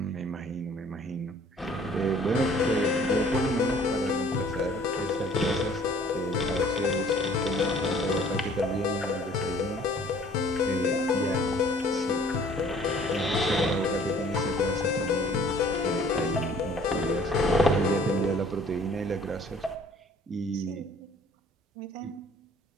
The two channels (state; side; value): normal; both; correlation 0.55